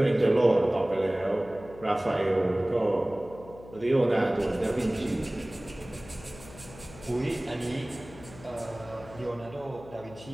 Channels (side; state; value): left; noise; hum, 18 dB below the sound